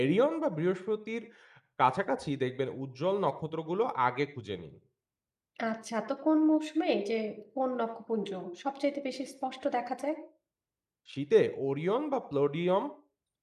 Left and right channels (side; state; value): both; identical; correlation 1.00